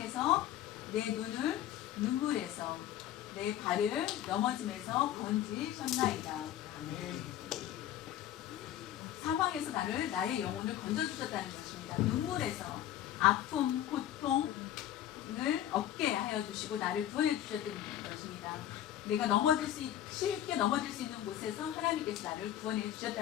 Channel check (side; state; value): right; quieter; 12.0 dB